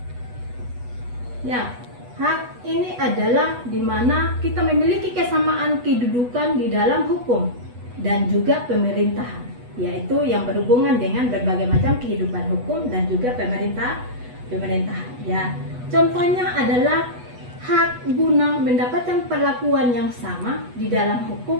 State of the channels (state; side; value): late; left; 8.2 ms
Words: Ya, hak ini adalah di mana kita memiliki kesamaan kedudukan di dalam hukum dan juga pemerintahan, yaitu yang berhubungan dengan berbagai macam kehidupan hukum dan juga pemerintahan. Ya, contohnya adalah hak guna mendapatkan perlakuan yang sama di dalam hukum